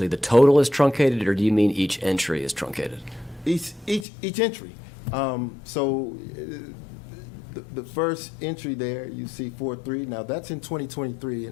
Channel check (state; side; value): drops out; right; at 4.0 s